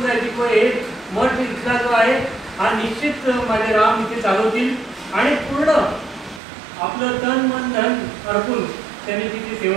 जायचे किंवा हे मठ इथला जो आहे हा निश्चित माझे राम इथे चालवतील आणि पूर्ण आपलं तन मन धन अर्पून त्यांनी तिची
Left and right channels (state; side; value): drops out; left; at 6.4 s